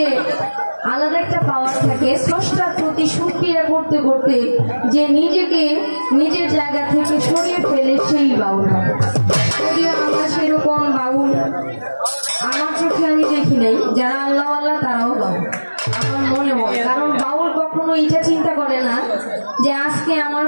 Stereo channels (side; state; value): both; inverted; correlation -1.00